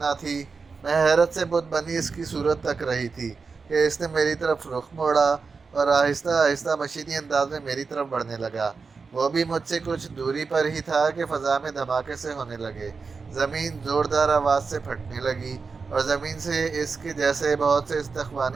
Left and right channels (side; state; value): left; quieter; 4.8 dB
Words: تھی۔ میں حیرت سے بت بنی اس کی صورت تک رہی تھی کہ اس نے میری طرف رخ موڑا اور آہستہ آہستہ مشینی انداز میں میری طرف بڑھنے لگا۔ وہ بھی مجھ سے کچھ دوری پر ہی تھا کہ فضا میں دھماکے سے ہونے لگے، زمین زوردار آواز سے پھٹنے لگی اور زمین سے اس کے جیسے بہت سے